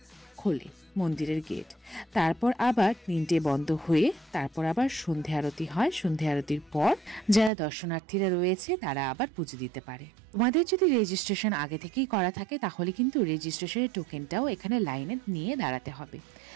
খোলে মন্দিরের গেট। তারপর আবার 3টে বন্ধ হয়ে তারপর আবার সন্ধে আরতি হয়। সন্ধে আরতির পর যারা দর্শনার্থীরা রয়েছে তারা আবার পুজো দিতে পারে। তোমাদের যদি রেজিস্ট্রেশন আগে থেকেই করা থাকে, তাহলে কিন্তু রেজিস্ট্রেশনের টোকেনটাও এখানে লাইনে নিয়ে দাঁড়াতে হবে,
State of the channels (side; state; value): left; drops out; at 7.5 s